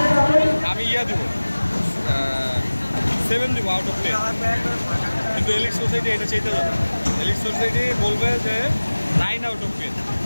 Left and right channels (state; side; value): inverted; both; correlation -1.00